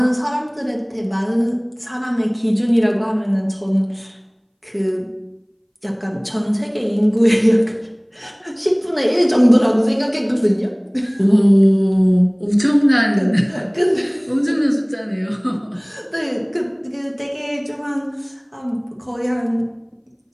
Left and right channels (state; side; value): identical; both; correlation 1.00